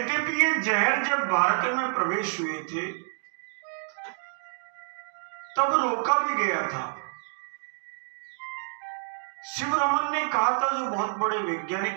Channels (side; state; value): left; silent; 59 dB below the other